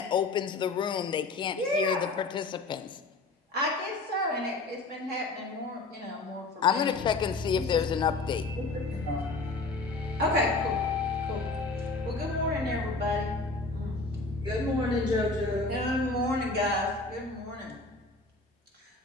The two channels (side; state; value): right; quieter; 3.4 dB